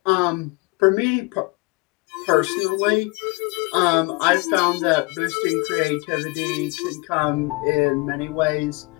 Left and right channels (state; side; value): quieter; right; 27.2 dB